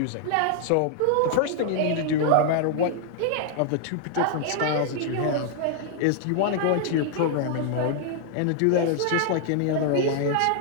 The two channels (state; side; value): different; both; correlation -0.01